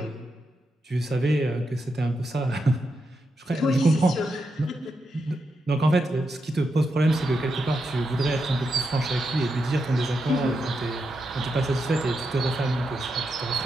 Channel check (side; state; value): both; normal; correlation 0.85